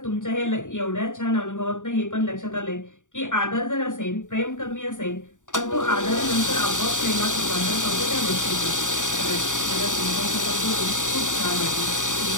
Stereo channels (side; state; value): right; late; 0.86 ms